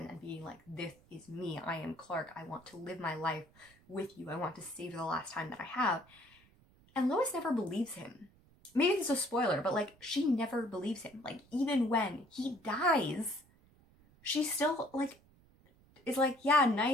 and being like, this is me, I am Clark, I want to live my life with you, I want to save the last time that I have. And Lois never believes him. maybe this is a spoiler, but like she never believes him. Like even when he dies, she still like is like, yeah,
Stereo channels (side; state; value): right; noise; rumble, 29 dB below the sound